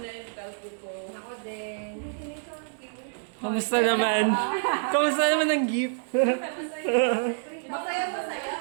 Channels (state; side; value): silent; left; 60 dB below the other